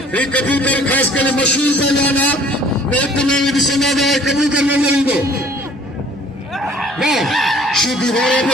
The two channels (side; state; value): both; normal; correlation 0.54